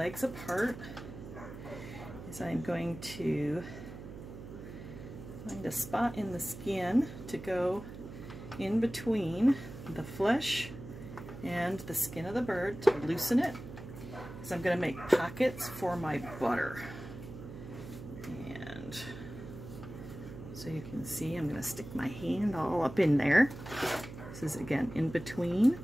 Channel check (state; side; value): noise; right; hum, 12 dB below the sound